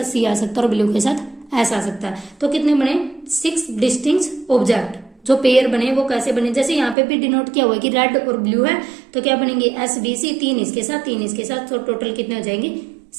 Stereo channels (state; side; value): drops out; left; at 7.0 s